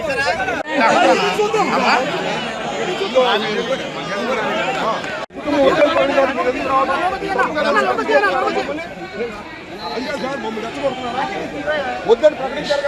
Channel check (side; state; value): both; identical; correlation 1.00